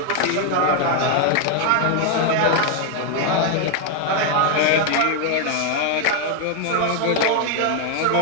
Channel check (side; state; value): both; different; correlation 0.01